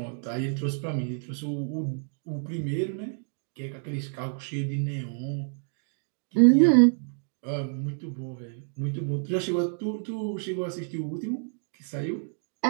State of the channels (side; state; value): left; silent; 59 dB below the other